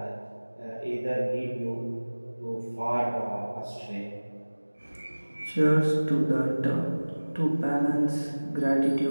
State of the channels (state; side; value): inverted; both; correlation -1.00